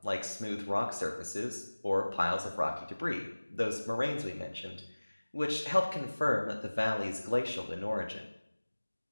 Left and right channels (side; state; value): both; inverted; correlation -1.00